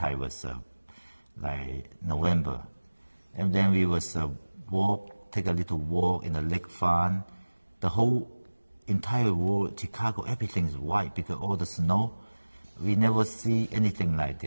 was like November, and then we was take a little walk in the lake front. The whole entire world, Chicago, everything is white because all the snow. We never see anything like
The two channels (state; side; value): inverted; both; correlation -1.00